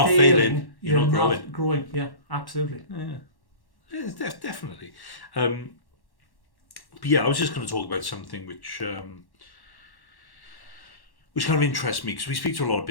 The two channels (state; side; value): late; right; 1.1 ms